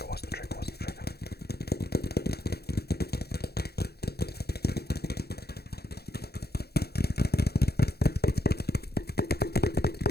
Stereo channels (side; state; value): right; late; 0.46 ms